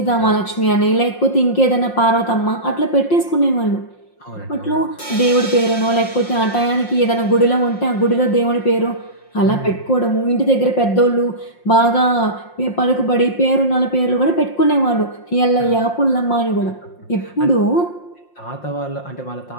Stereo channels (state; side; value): late; right; 5.6 ms